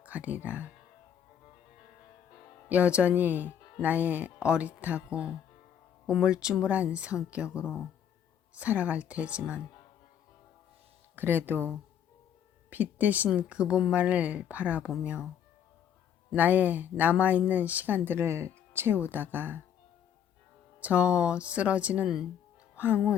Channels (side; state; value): right; quieter; 9.0 dB